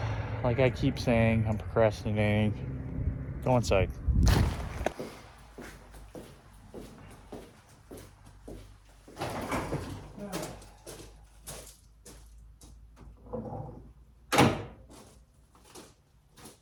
Like I keep saying, I'm procrastinating. Go inside.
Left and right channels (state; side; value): identical; both; correlation 1.00